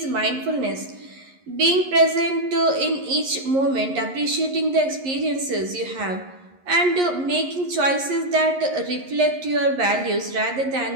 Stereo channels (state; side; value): late; left; 11 ms